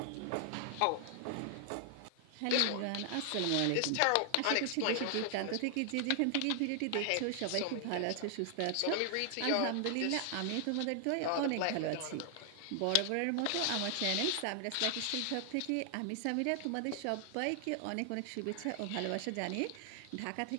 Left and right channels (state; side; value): different; both; correlation 0.00